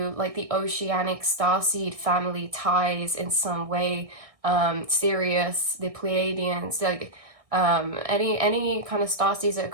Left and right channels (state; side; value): late; left; 1.6 ms